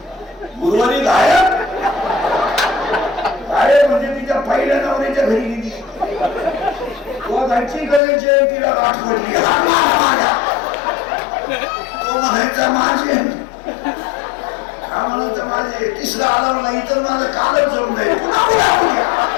गुरुवारी गायब म्हणजे तिच्या पहिल्या नवऱ्याच्या घरी गेली घरची करायची तिला गाठ पडली तो म्हणायचा माझे हा म्हणायचा माझे 31ला आला नाही तर माझं कालच जळून जाईल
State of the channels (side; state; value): right; drops out; at 8.0 s